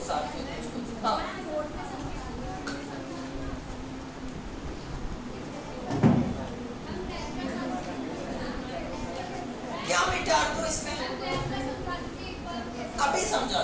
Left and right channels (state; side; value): identical; both; correlation 1.00